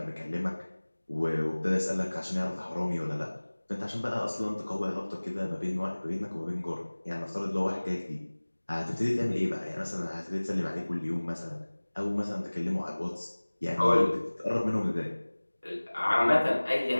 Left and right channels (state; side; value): inverted; both; correlation -1.00